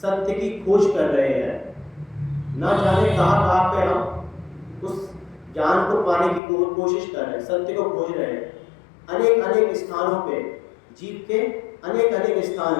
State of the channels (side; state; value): right; drops out; at 6.4 s